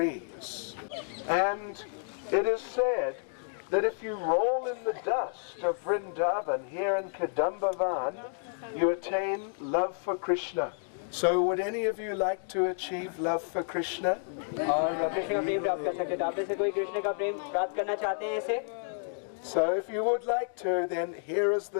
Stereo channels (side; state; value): right; silent; digital silence